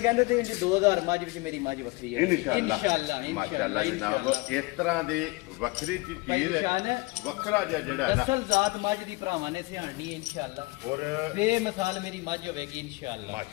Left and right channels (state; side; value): quieter; right; 23.6 dB